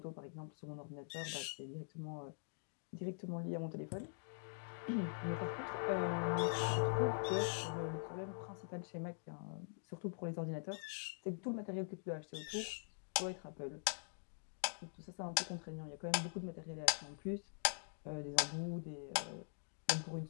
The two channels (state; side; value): silent; right; digital silence